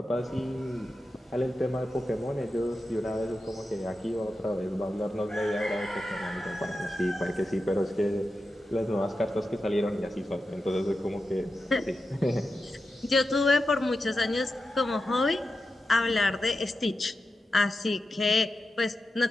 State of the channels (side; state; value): both; normal; correlation 0.91